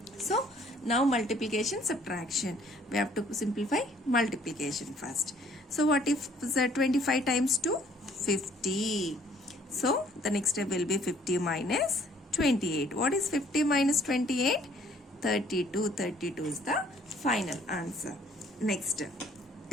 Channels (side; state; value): both; normal; correlation 0.60